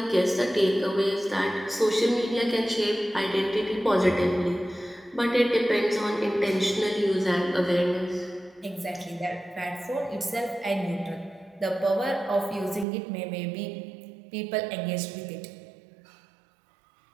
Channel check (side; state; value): left; drops out; at 12.9 s